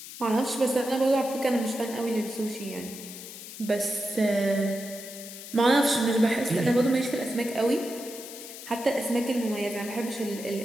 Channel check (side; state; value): left; noise; hiss, 13 dB below the sound